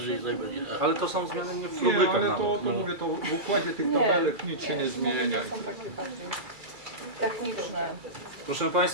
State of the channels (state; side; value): late; left; 2.3 ms